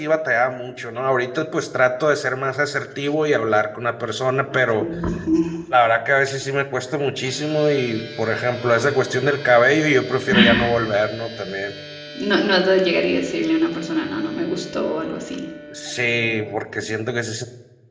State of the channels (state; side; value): identical; both; correlation 1.00